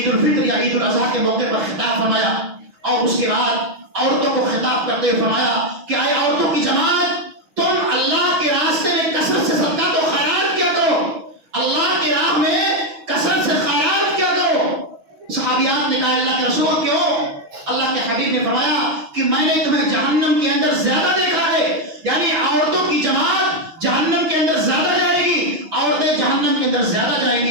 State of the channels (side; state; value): left; late; 6.2 ms